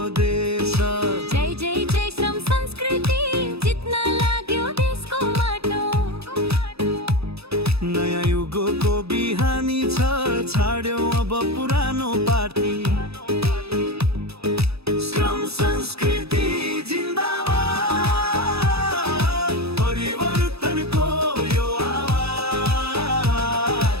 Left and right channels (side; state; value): left; late; 0.78 ms